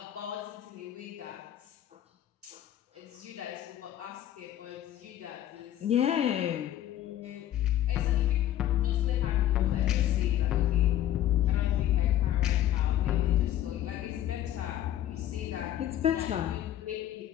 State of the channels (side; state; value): right; quieter; 12.3 dB